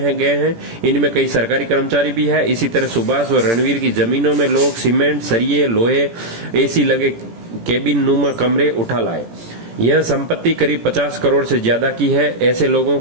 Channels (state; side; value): late; left; 17 ms